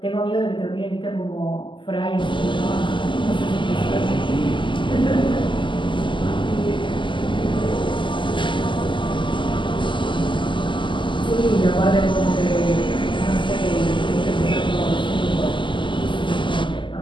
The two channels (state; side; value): late; right; 0.24 ms